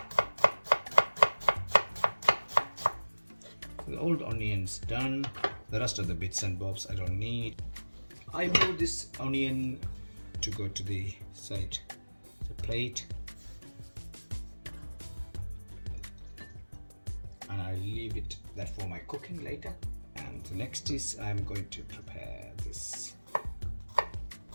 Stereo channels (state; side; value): inverted; both; correlation -1.00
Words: The old onions done. The rest of the bits and bobs I don't need. I move this onion to go to the side, the plate, and I leave it that for my cooking later. And the next is I'm going to prepare this